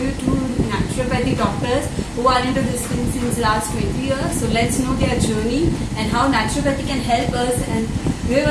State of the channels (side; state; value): both; identical; correlation 1.00